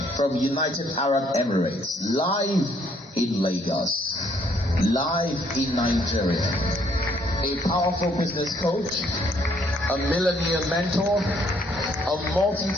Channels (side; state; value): both; normal; correlation 0.67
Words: from United Arab Emirates, live in Lagos, live in Nigeria, a powerful business coach, a millionaire mentor, a